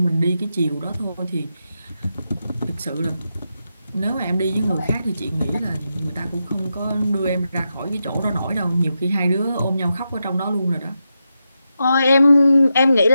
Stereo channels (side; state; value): both; inverted; correlation -0.87